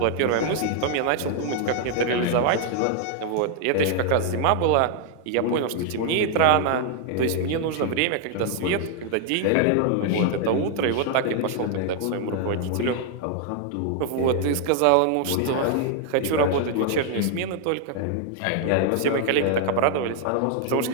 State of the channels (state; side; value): different; both; correlation 0.00